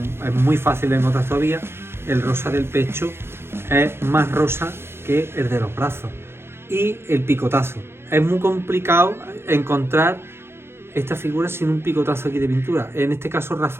es muy fácil de encontrar todavía, el rosa del pecho es más rosa que el de los brazos. Y el picotazo. Es muy complicado encontrar esta figura sin un picotazo aquí de pintura. En este caso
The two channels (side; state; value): left; late; 0.12 ms